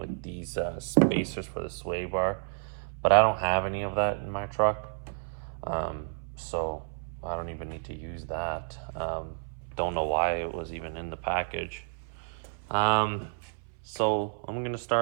these spacers for the sway bar. But I don't have any of that in my truck. So I don't even need to use that. Don't know why it was even in the package. So I'm gonna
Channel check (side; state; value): left; silent; 57 dB below the other